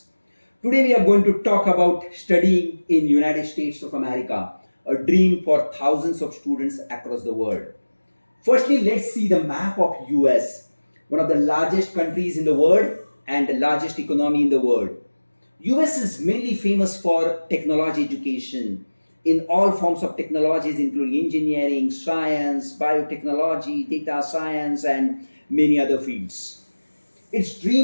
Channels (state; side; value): inverted; both; correlation -1.00